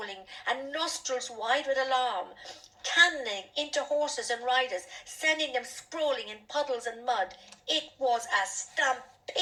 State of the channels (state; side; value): identical; both; correlation 1.00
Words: and nostrils wide with alarm, cannoning into horses and riders, sending them sprawling in puddles and mud. It was a